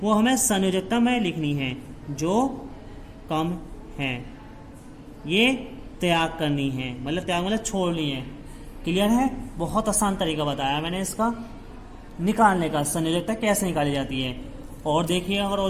वो हमें संयोजकता में लिखनी है। जो कम है ये त्याग करनी है, मतलब त्याग मतलब छोड़नी है। क्लियर है? बहुत आसान तरीका बताया मैंने इसका निकालने का, संयोजकता कैसे निकाली जाती है। और देखिए, अगर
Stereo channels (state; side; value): identical; both; correlation 1.00